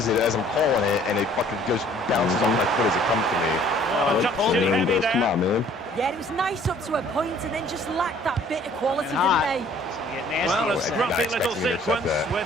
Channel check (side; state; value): both; normal; correlation 0.56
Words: it as I'm calling it, and it fucking goes bounces off my foot as it comes to me. Oh, Nope. touched it And then heavy goes, come there. on, man. Yeah, it was nice up to a point and then just lacked that bit of quality, And hot. didn't they? It's gonna get nasty. Well, a I'm not scruffy little expecting you to accept sequence that.